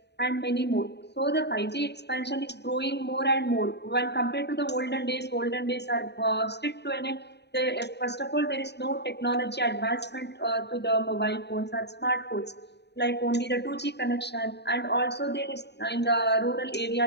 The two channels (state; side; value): late; right; 0.49 ms